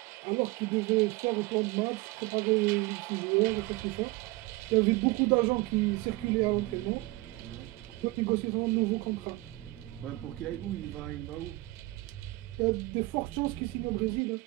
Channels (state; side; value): quieter; left; 21.3 dB